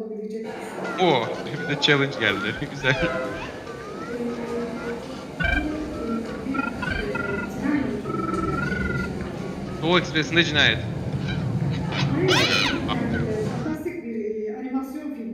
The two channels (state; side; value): identical; both; correlation 1.00